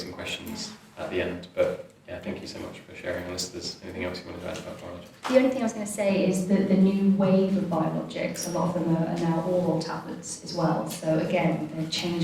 questions at the end, but yeah, thank you so much for sharing. Unless there's anything else you want to add about biologics. The only thing I was going to say is that the new wave of biologics, a lot of them are now oral tablets as well. So again, they're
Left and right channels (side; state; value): both; identical; correlation 1.00